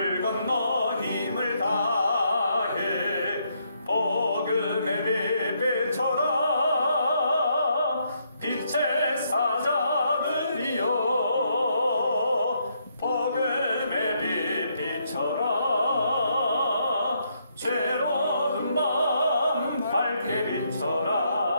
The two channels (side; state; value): both; inverted; correlation -0.74